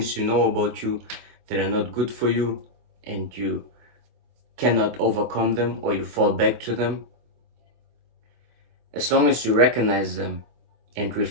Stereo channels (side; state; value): left; late; 24 ms